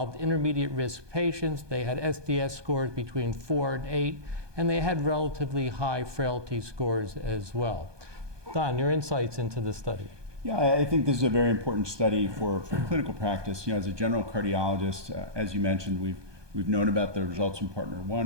intermediate risk patients. They had SDS scores between 4 and 8, and they had relatively high frailty scores as well. Don, your insights into the study. Yeah, I think this is a very important study for clinical practice. You know, as a general cardiologist, as you mentioned, we've known about the results from PARTNER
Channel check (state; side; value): late; left; 1.2 ms